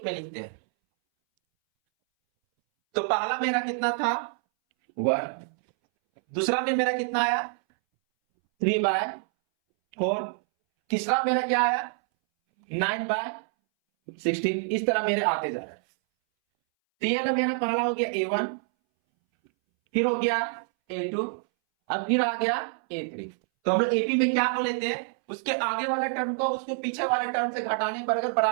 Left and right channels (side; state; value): left; silent; 60 dB below the other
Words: में लिखते हैं। तो पहला मेरा कितना था, 1, दूसरा में मेरा कितना आया, 3/4, तीसरा मेरा क्या आया, 9/16। इस तरह मेरे आते जा रहे हैं। तो ये मेरा पहला हो गया A1, फिर हो गया A2, अब फिर आ गया A3। तो हम लोग AP में क्या हो लेते हैं, उसके आगे वाले टर्म को उसके पीछे वाले टर्म से घटाने पर अगर